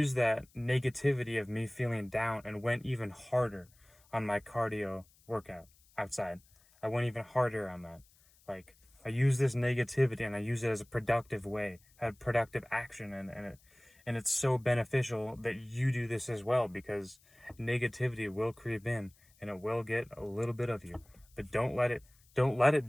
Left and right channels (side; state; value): left; noise; hiss, 30 dB below the sound